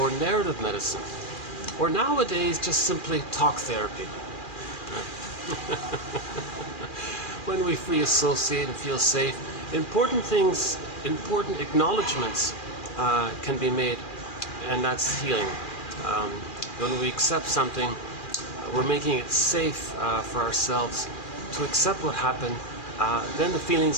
narrative medicine, or nowadays just simply talk therapy. When we free associate and feel safe, important acknowledgements can be made, and that's healing. When we accept something, we're making it safe for ourselves to accept what happened. Then the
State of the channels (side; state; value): right; late; 2.4 ms